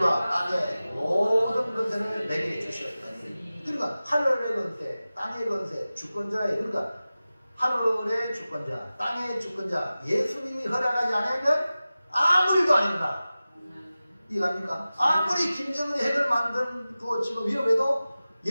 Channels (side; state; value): both; inverted; correlation -0.96